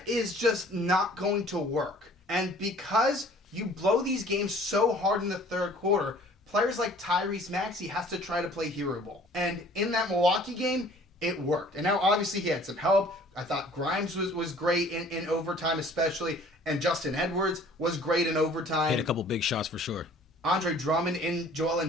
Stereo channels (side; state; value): both; normal; correlation 0.52